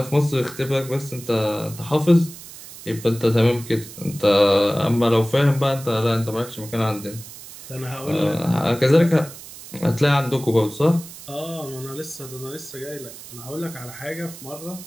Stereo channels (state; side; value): noise; right; hiss, 15 dB below the sound